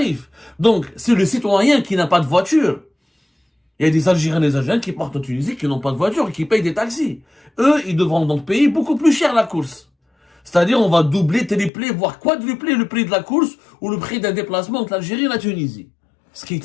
Donc, c'est le citoyen qui n'a pas de voiture. Il y a des Algériens et des Algériens qui partent en Tunisie, qui n'ont pas de voiture et qui payent des taxis. Eux, ils devront donc payer beaucoup plus cher la course. C'est-à-dire, on va doubler, tripler, voire quadrupler le prix de la course ou le prix d'un déplacement entre l'Algérie et la Tunisie. Ce qui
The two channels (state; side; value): drops out; right; at 11.7 s